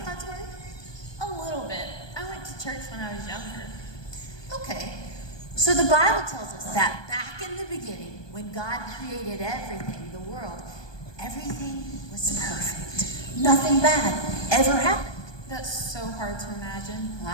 God's Word? A little bit. I went to church when I was younger. Okay. So the Bible tells us that back in the beginning, when God created everything, the world, everything was perfect. Nothing bad ever happened. That's so hard to imagine.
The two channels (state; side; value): late; right; 1.2 ms